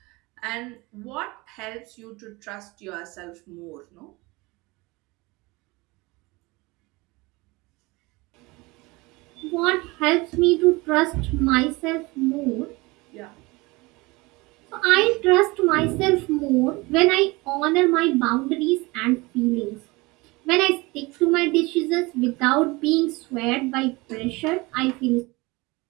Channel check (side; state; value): left; quieter; 23.6 dB